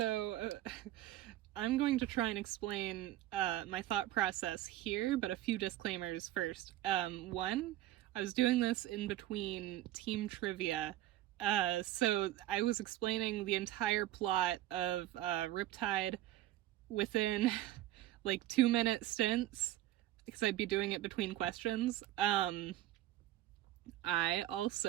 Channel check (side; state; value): left; quieter; 14.6 dB